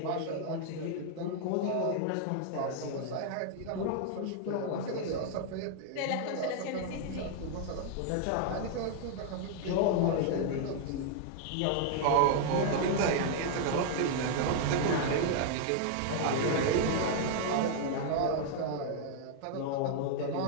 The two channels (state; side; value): different; both; correlation -0.01